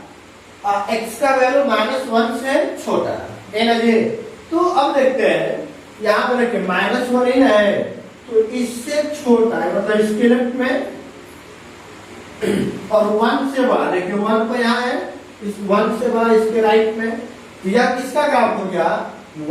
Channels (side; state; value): both; identical; correlation 1.00